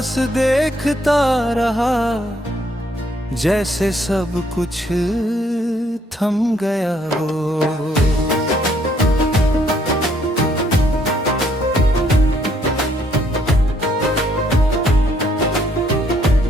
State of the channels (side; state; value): both; normal; correlation 0.68